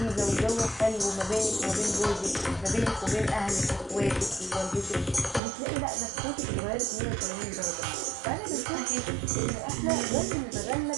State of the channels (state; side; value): drops out; left; at 5.4 s